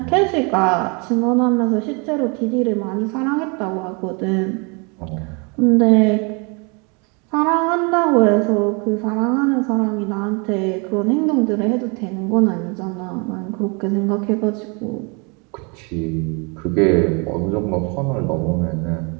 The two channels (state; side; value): quieter; left; 32.4 dB